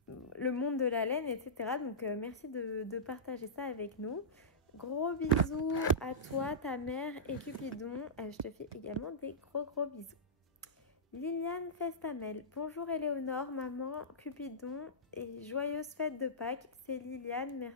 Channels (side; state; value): both; normal; correlation -0.17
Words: monde de la laine, etc. Donc, merci de partager ça avec nous. Gros bisous à toi, ta mère et Cupidon. Je te fais également des gros bisous. Liliane Festamel. Bonjour Éléonore, maman, Cupidon et joyeuse fête de Pâques. C'est Liliane,